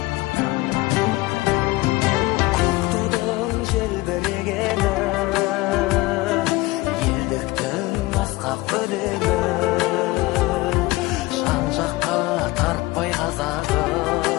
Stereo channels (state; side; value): quieter; right; 20.4 dB